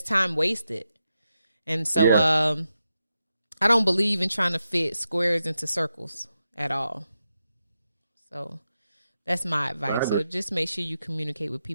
time wasted. And so, I don't believe in trying to fit squares into circles at all. So that's my advice. So just make sure you communicate with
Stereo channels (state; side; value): inverted; both; correlation -0.88